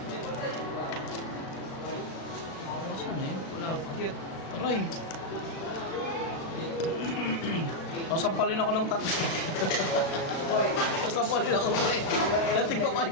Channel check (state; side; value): late; right; 36 ms